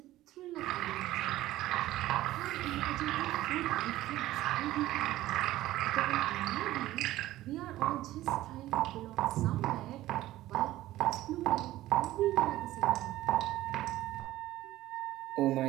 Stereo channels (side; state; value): left; quieter; 15.6 dB